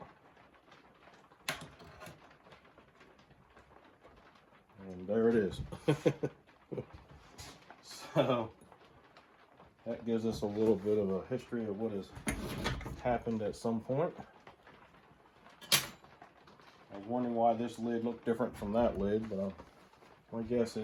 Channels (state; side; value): identical; both; correlation 1.00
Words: And there it is. So that gives us a little bit of a history of what has happened at some point. I was wondering why this lid looked different from that lid, but my guess